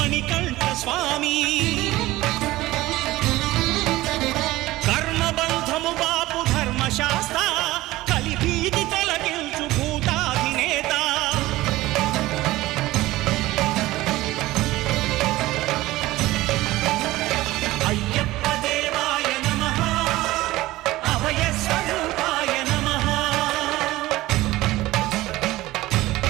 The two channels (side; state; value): left; quieter; 17.7 dB